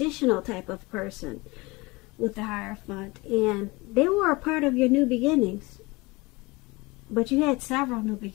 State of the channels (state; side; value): quieter; right; 23.9 dB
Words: type of person with the Hierophant, and they were a part of your new beginnings. But you had several new